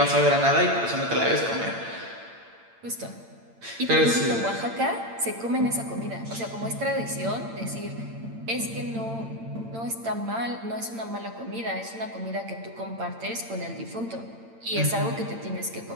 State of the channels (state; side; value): late; left; 8.8 ms